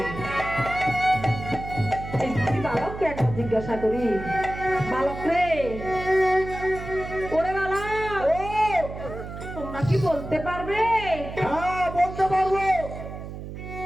এই দুটি বালককে একবার জিজ্ঞাসা করি, বালক রে, ওরে বালক, তোমরা কি বলতে পারবে? হ্যাঁ, বলতে পারবো।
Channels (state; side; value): noise; right; hum, 10 dB below the sound